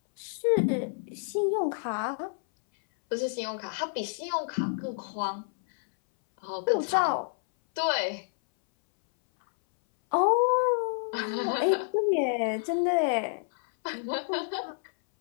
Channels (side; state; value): right; silent; 59 dB below the other